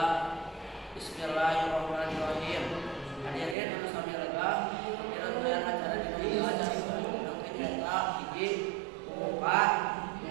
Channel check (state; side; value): drops out; left; at 3.6 s